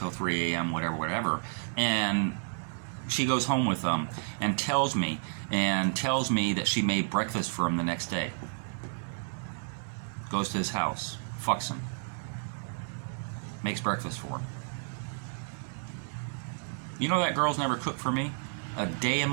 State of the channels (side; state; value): left; silent; digital silence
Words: 3 a.m., whatever. And she goes home with him and tells me that she made breakfast for him the next day. Goes to his house, fucks him, makes breakfast for him. You know that girl's never cooked for me? A day in